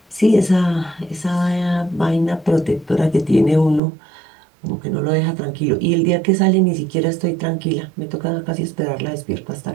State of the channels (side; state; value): left; drops out; at 3.8 s